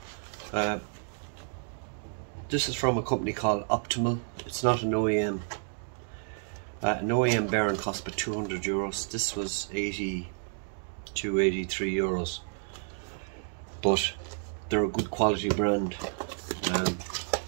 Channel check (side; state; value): left; silent; 57 dB below the other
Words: This is from a company called Optimal. It's not an OEM. An OEM bearing cost about €200. This was 82, 83 euros. But they're a good quality brand. And